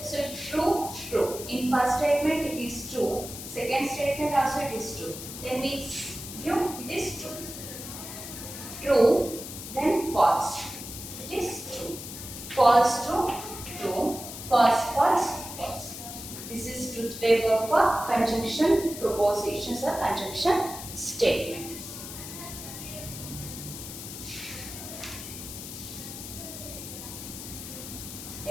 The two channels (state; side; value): noise; left; hiss, 10 dB below the sound